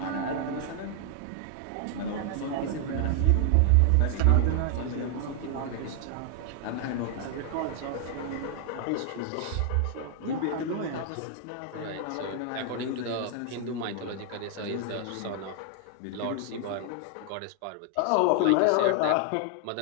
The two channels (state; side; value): different; both; correlation 0.00